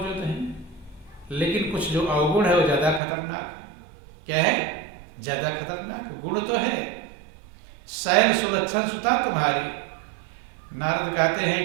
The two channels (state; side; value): drops out; left; at 3.0 s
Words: हैं, लेकिन कुछ जो अवगुण है वो ज्यादा खतरनाक है। क्या है? ज्यादा खतरनाक गुण तो है। शैल सुलक्षण सुता तुम्हारी। नारद कहते